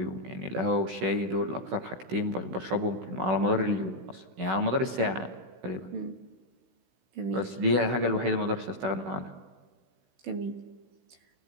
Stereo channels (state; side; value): late; left; 16 ms